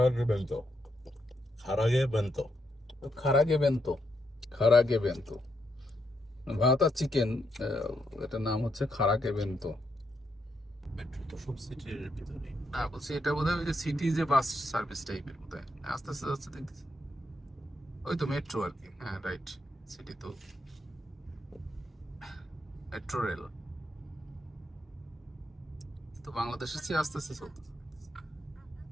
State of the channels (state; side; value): normal; both; correlation 0.79